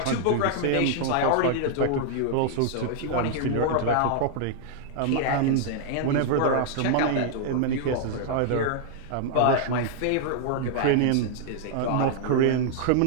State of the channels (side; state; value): both; different; correlation -0.01